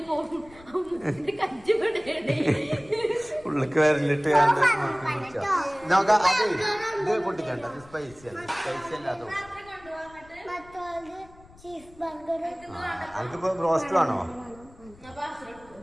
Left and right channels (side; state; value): left; noise; rumble, 23 dB below the sound